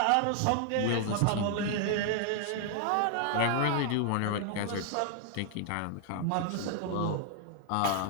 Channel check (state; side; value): different; both; correlation 0.00